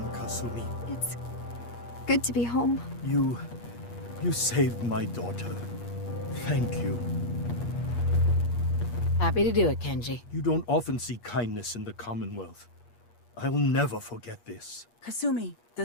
Kasumi. It's good to be home. You saved my daughter. Thank you. Happy to do it, Kenji. You don't often see kindness in the Commonwealth. I'll never forget this. Kasumi,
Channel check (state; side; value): late; right; 8.4 ms